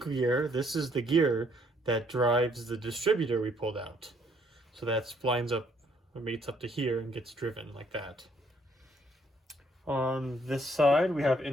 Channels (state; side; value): normal; both; correlation 0.67